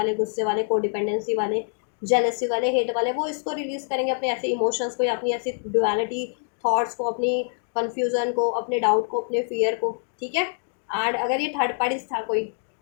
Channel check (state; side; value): silent; right; digital silence